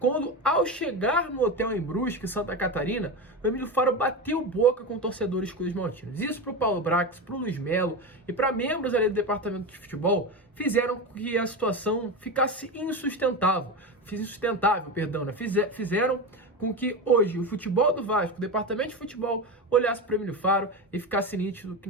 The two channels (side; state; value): both; normal; correlation 0.20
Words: ao chegar no hotel em Brusque, Santa Catarina, o Emílio Faro bateu boca com torcedores cruzmaltinos. Isso para o Paulo Brax, para o Luiz Melo e para membros ali do departamento de futebol fizeram com que a situação ficasse insustentável. Fizeram com que hoje o futebol do Vasco, o departamento de futebol, olhasse para o Emílio Faro e ficasse nítido que